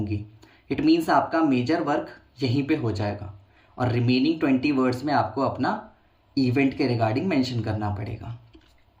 इट मीन्स आपका मेजर वर्क यहीं पे हो जाएगा, और रिमेनिंग 20 वर्ड्स में आपको अपना इवेंट के रिगार्डिंग मेंशन करना पड़ेगा।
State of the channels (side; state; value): both; identical; correlation 1.00